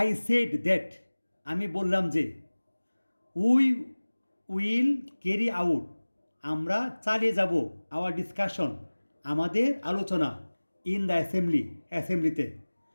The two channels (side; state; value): both; inverted; correlation -1.00